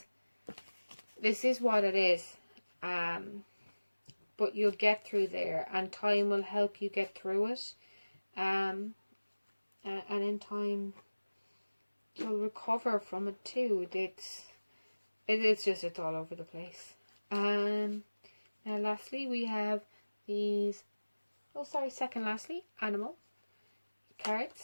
what it is. But you'll get through there, and time will help you get through it. And in time, you'll recover from it too. It's all over the place. Now lastly, we have these. Second lastly, animal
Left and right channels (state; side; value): inverted; both; correlation -1.00